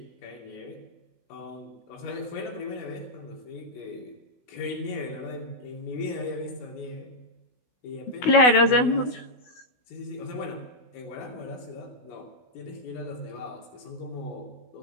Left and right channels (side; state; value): right; late; 16 ms